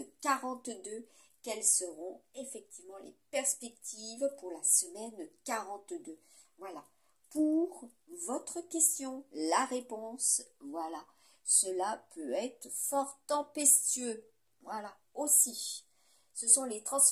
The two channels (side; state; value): both; identical; correlation 1.00